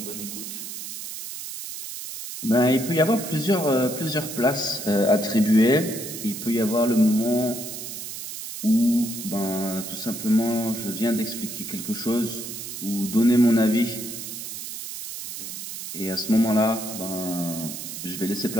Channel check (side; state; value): right; noise; hiss, 8 dB below the sound